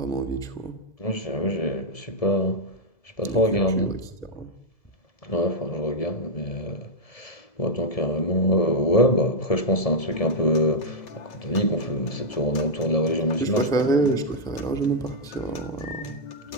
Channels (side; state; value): right; late; 2.0 ms